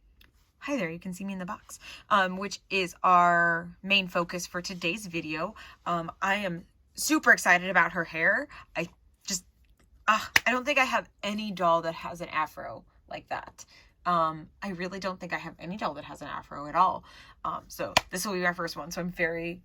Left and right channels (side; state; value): both; identical; correlation 1.00